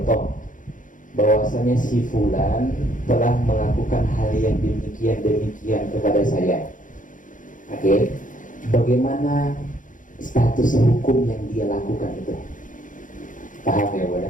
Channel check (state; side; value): late; right; 0.38 ms